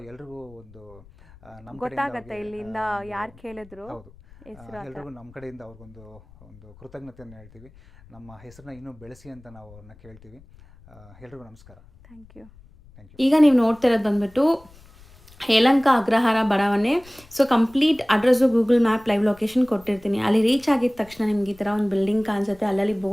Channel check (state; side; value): noise; left; rumble, 24 dB below the sound